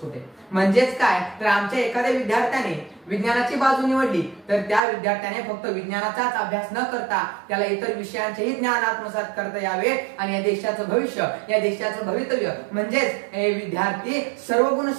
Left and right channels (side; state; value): left; drops out; at 4.8 s